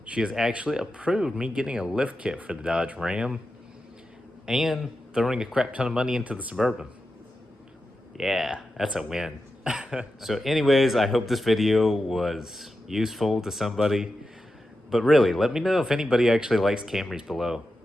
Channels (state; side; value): normal; both; correlation 0.90